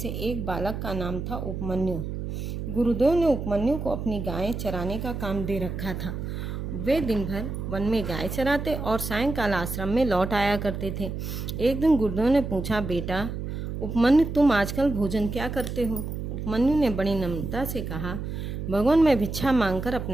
एक बालक का नाम था उपमन्यु। गुरुदेव ने उपमन्यु को अपनी गायें चराने का काम दे रखा था। वे दिन भर वन में गाय चराते और सायंकाल आश्रम में लौट आया करते थे। एक दिन गुरुदेव ने पूछा, बेटा उपमन्यु, तुम आजकल भोजन क्या करते हो? उपमन्यु ने बड़ी नम्रता से कहा, भगवान, मैं भिक्षा मांगकर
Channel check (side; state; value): right; noise; hum, 5 dB below the sound